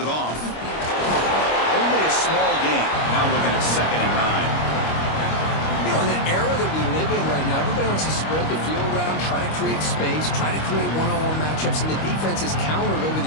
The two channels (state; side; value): late; right; 25 ms